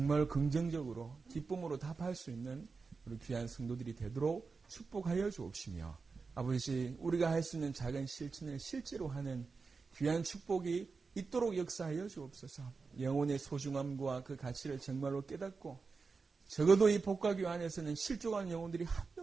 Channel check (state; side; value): quieter; left; 4.6 dB